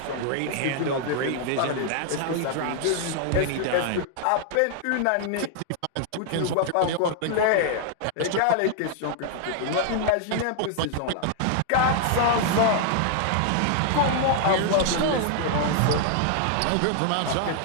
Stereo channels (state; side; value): different; both; correlation 0.00